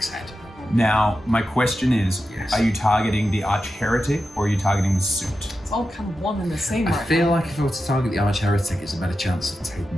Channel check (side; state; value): both; normal; correlation 0.90